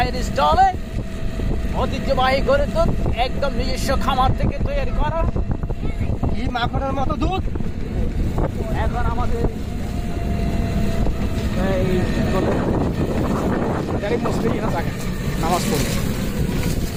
স্টলে ঐতিহ্যবাহী গরুর দুধ একদম নিজস্ব খামার থেকে তৈরি করা, এই মাখনের মতো দুধ। এখন আমাদের মুসলিম নামাজ পড়ি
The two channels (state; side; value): identical; both; correlation 1.00